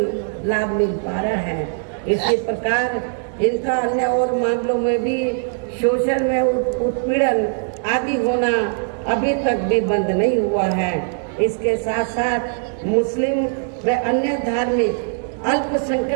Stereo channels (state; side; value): silent; left; 61 dB below the other